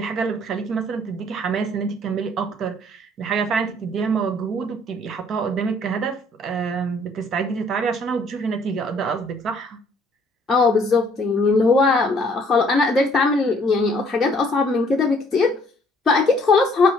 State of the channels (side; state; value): both; normal; correlation 0.61